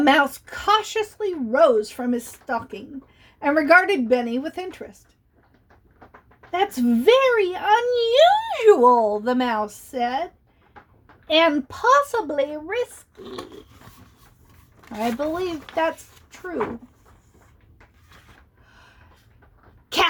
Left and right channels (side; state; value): both; identical; correlation 1.00